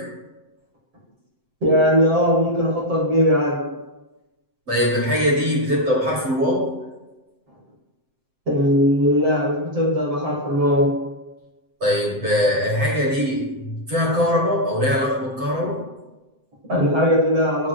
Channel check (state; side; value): late; left; 7.7 ms